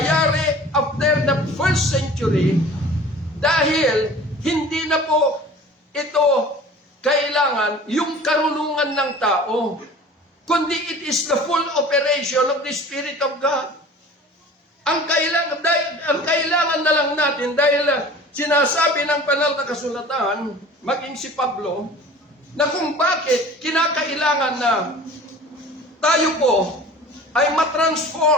after the first century, dahil hindi na po ito kailangan yung karunungan ng tao, kundi it is the full operation of the Spirit of God. Ang kailangan na lang natin, dahil sinasabi ng banal na kasulatan, maging si Pablo, na kung bakit kinakailangan na tayo po ay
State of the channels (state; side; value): normal; both; correlation 0.43